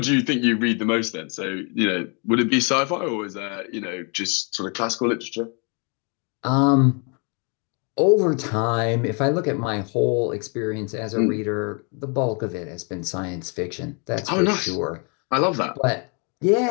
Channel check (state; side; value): quieter; right; 35.2 dB